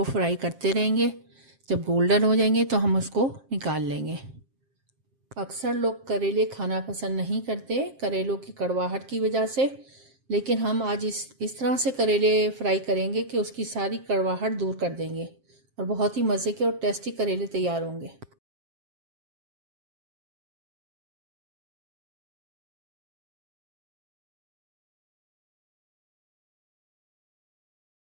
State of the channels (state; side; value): late; left; 7.5 ms